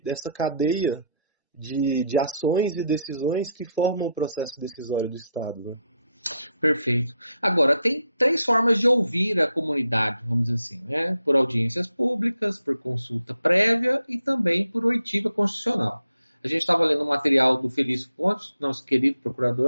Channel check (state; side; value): inverted; both; correlation -0.77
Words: cadeia de ações e decisões que formam o processo decisório do Estado, né? Perfeito. Agora, tem três formas de ouvir a comunidade, vamos dizer assim, né? Por audiências públicas, por consulta prévia e também por oitiva constitucional. A gente estava lendo um material do Felício Pontes, nosso querido